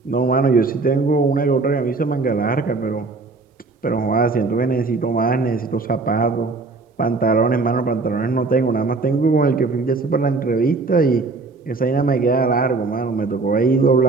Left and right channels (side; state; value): left; quieter; 3.8 dB